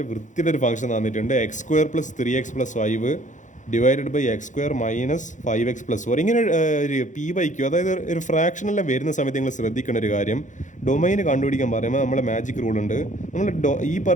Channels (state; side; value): late; right; 0.36 ms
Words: വൃത്തിയുടെ ഒരു ഫംഗ്ഷൻ തന്നിട്ടുണ്ട്. x² + 3x + 5 divided by x² - 5x + 4. ഇങ്ങനെ ഒരു p/q, അതായത് ഒരു ഫ്രാക്ഷനെല്ലാം വരുന്ന സമയത്ത് നിങ്ങൾ ശ്രദ്ധിക്കേണ്ട ഒരു കാര്യം, ഡൊമൈൻ കണ്ടുപിടിക്കാൻ പറയുമ്പോൾ നമ്മളെ മാജിക് റൂൾ ഉണ്ട്. നമ്മൾ ഈ